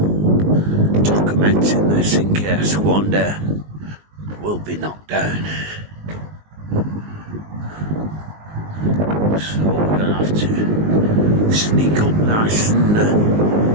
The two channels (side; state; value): left; late; 19 ms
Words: documenting this in case one day we'll be knocked down. So we're gonna have to sneak up nice and